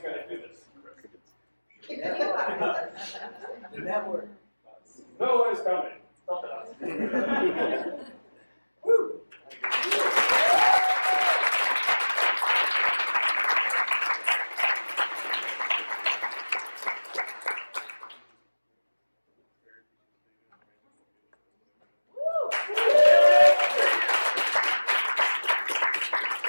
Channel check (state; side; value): inverted; both; correlation -1.00